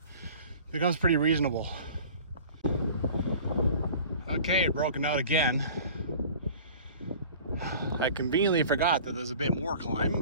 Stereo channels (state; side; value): inverted; both; correlation -0.44